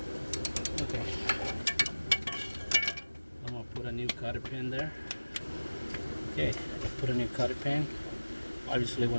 Okay. I'm gonna put a new cotter pin there. Okay, put a new cotter pin. Obviously,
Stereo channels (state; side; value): inverted; both; correlation -1.00